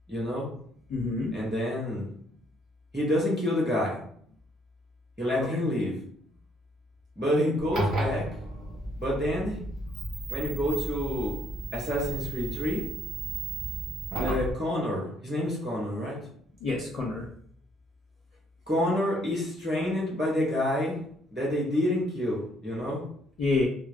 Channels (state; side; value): normal; both; correlation 0.68